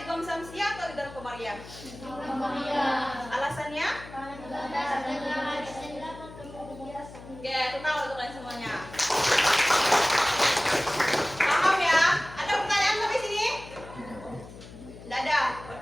samsiah atau idgham qamariyah? Alasannya? Oke, total untuk kalian semuanya. Paham ya? Ada pertanyaan sampai sini? Tidak ada,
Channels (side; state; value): left; noise; hum, 16 dB below the sound